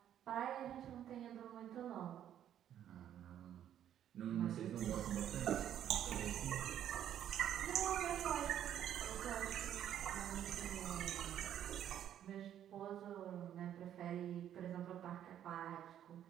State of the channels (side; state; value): left; quieter; 10.5 dB